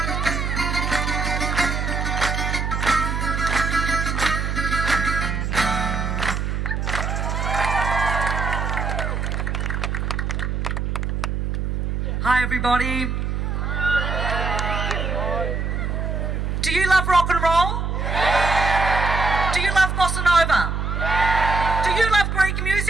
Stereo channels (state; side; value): noise; right; hum, 1 dB below the sound